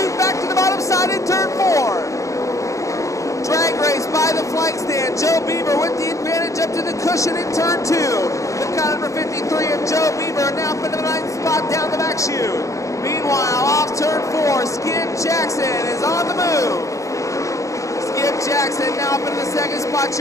back to the bottom side in turn 4. Drag race by the flank stand. Joe Beaver with the advantage up to the cushion in turn 2. The car number 53 of Joe Beaver now up into the 9th spot down the back chute. Meanwhile, off turn 4, Skip Jackson is on the move. Skip Jackson now up into the second spot.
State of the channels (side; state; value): right; late; 0.15 ms